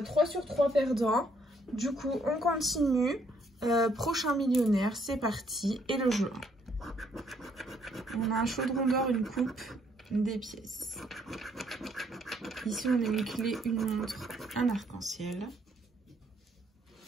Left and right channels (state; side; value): normal; both; correlation 0.69